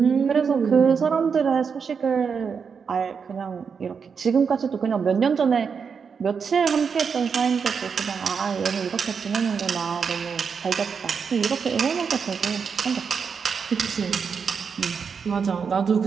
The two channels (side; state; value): left; quieter; 6.1 dB